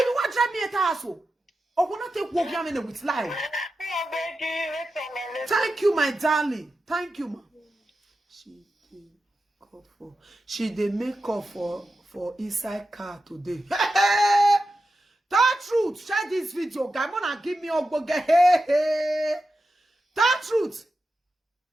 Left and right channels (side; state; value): both; normal; correlation 0.91